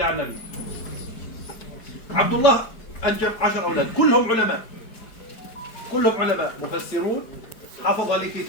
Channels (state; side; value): late; right; 4.6 ms